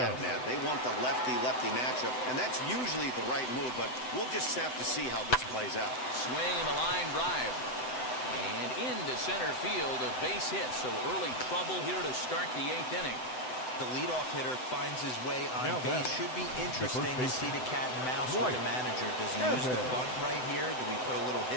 Yes. Matt. They want the lefty-lefty matchup, and that's usually the right move, but we'll just have to see how this plays out. Swing and a line drive. And into center field, a base hit. So early trouble here to start the 8th inning. The leadoff hitter finds his way on Now base. back. Should be interesting to baseman. see the cat and mouse Right. with the manager. Does he use the Evans. bunt right here? Do we put a little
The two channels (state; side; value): late; right; 7.9 ms